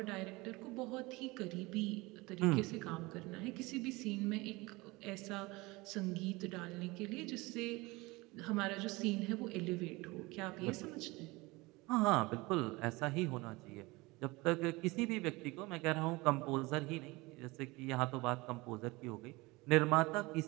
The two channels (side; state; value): left; quieter; 23.0 dB